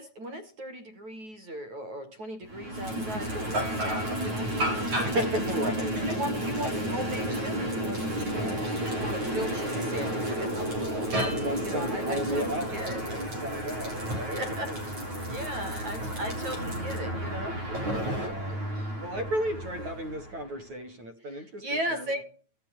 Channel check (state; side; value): late; left; 9.2 ms